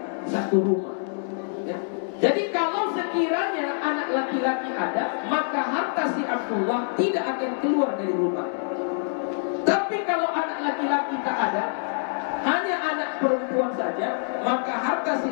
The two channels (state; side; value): silent; right; digital silence